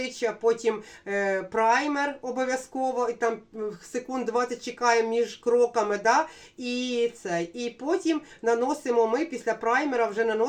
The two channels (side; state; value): both; identical; correlation 1.00